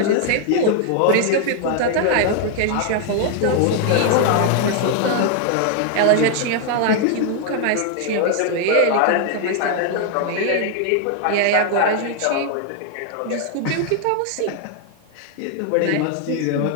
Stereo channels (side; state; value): both; different; correlation 0.00